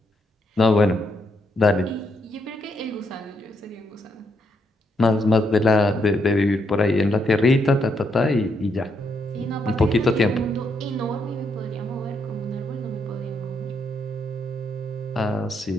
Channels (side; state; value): both; normal; correlation 0.77